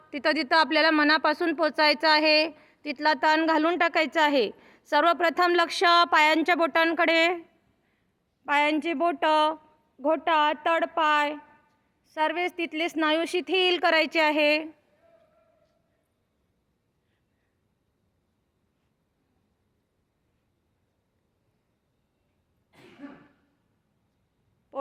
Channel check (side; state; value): both; identical; correlation 1.00